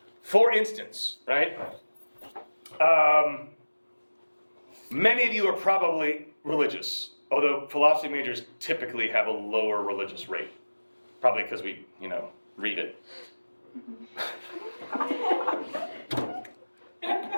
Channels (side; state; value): both; inverted; correlation -1.00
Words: For instance, right? Many of you are probably religious. Although philosophy majors typically have a lower religious rate. Probably because we, read it.